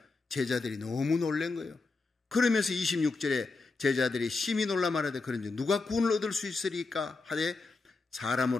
제자들이 너무 놀란 거예요. 그러면서 26절에 제자들이 심히 놀라 말하되 그런지 누가 구원을 얻을 수 있으리까 하되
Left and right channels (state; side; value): quieter; right; 3.8 dB